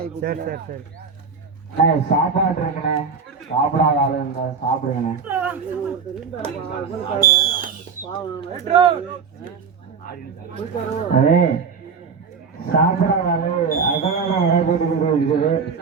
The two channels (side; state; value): left; quieter; 5.7 dB